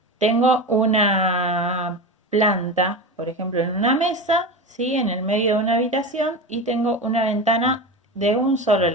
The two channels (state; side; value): normal; both; correlation 0.24